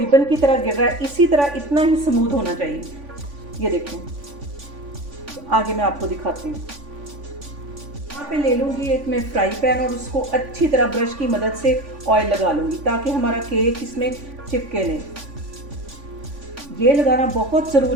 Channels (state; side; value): late; left; 3.5 ms